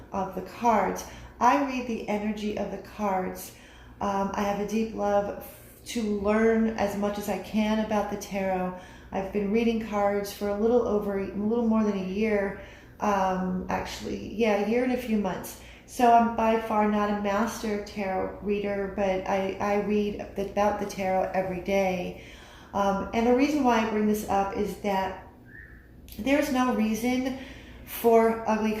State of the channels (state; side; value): identical; both; correlation 1.00